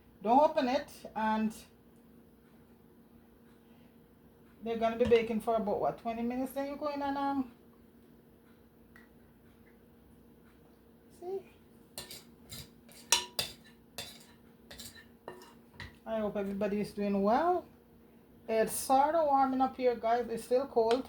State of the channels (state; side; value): identical; both; correlation 1.00